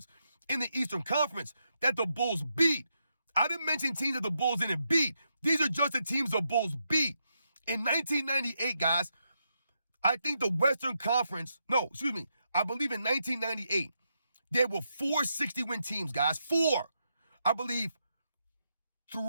in the Eastern Conference that the Bulls beat. I didn't mention teams that the Bulls didn't beat. These are just the teams the Bulls beat. In 1998, guys, I think the Western Conference, I believe in 1998, there were 4 60-win teams, guys. 4. I believe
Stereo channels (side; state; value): both; inverted; correlation -0.82